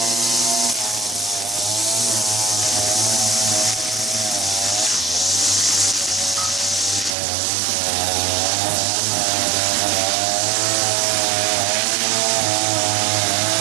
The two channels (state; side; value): drops out; left; at 7.1 s